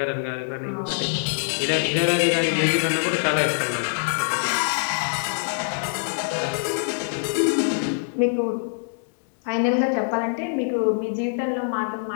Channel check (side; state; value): right; silent; 63 dB below the other